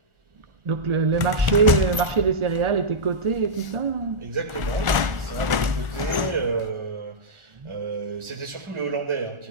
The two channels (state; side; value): late; left; 1.4 ms